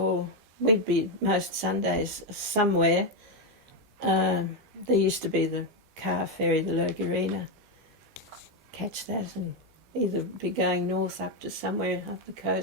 we'd be most Sundays somewhere. There used to be the car ferry, the Logurina. Catch that and either be going north up to somewhere up the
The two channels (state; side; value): normal; both; correlation 0.06